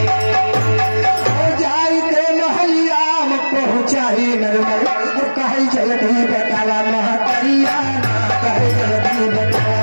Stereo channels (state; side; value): inverted; both; correlation -1.00